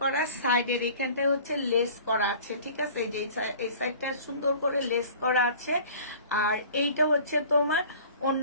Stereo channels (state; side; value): inverted; both; correlation -0.46